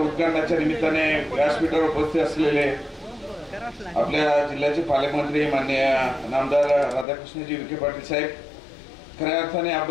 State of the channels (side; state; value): right; drops out; at 7.1 s